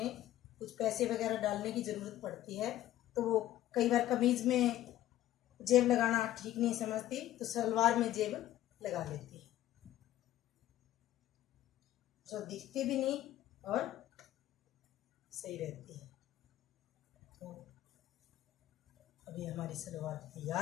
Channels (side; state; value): right; quieter; 13.9 dB